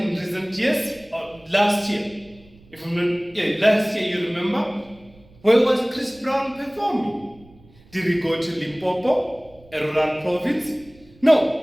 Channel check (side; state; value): right; noise; rumble, 27 dB below the sound